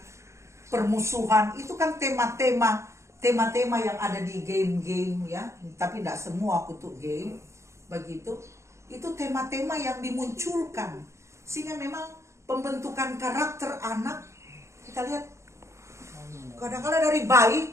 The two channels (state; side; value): late; left; 0.14 ms